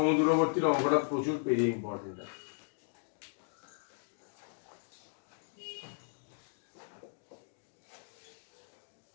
অঙ্কটা প্রচুর পেজে ইম্পর্টেন্ট আছে।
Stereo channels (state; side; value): silent; right; digital silence